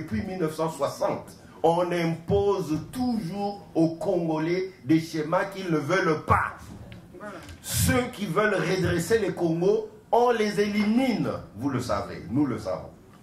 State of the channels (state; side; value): identical; both; correlation 1.00